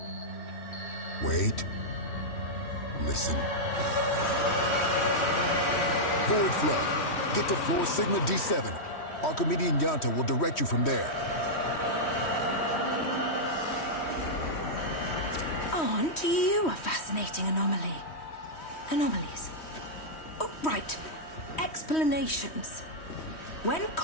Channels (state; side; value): late; right; 3.1 ms